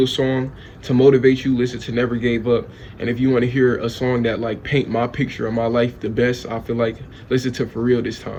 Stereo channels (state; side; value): identical; both; correlation 1.00